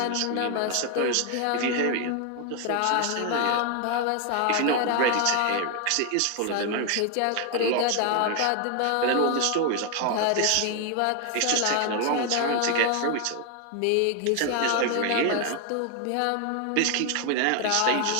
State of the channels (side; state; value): both; different; correlation 0.01